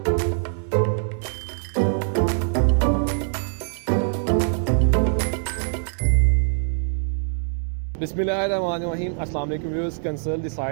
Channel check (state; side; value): silent; left; 62 dB below the other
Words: बिस्मिल्लाहिर्रहमानिर्रहीम, अस्सलाम वालेकुम viewers. Consult